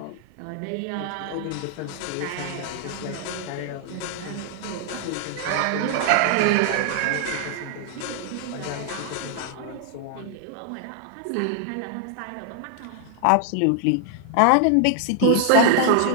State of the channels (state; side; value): different; both; correlation 0.00